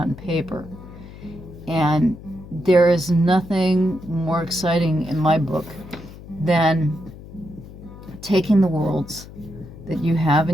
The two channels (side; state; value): left; noise; hum, 16 dB below the sound